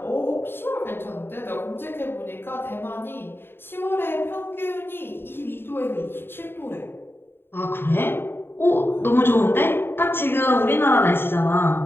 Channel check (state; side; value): late; right; 0.11 ms